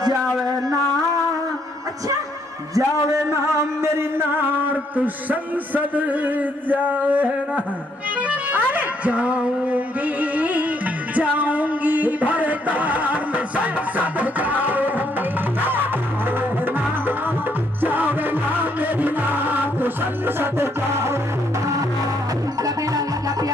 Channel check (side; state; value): both; normal; correlation 0.71